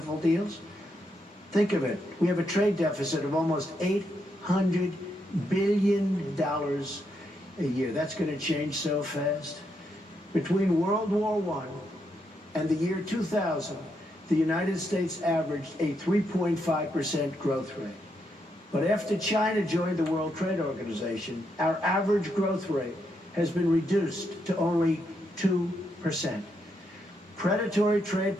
deals? Think of it. We have a trade deficit of almost $800 billion a year. That's going to change so fast. Between World War I and the year 2000, the United States averaged a 3.5% growth rate. But after China joined the World Trade Organization, our average growth rate has been reduced to only 2%. Predatory trade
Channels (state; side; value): normal; both; correlation 0.79